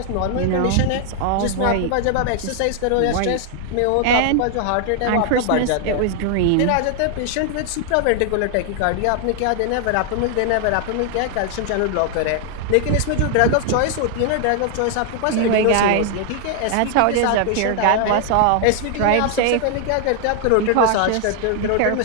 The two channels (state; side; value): different; both; correlation 0.00